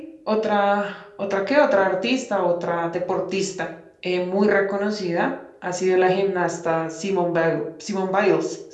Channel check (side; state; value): both; identical; correlation 1.00